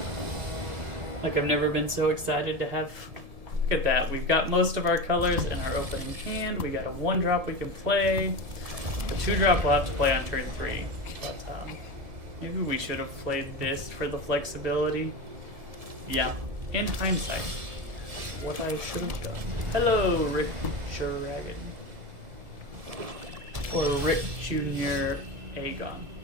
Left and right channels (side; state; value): left; late; 1.7 ms